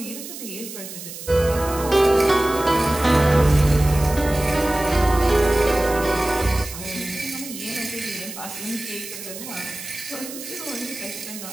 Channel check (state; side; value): noise; right; hiss, 11 dB below the sound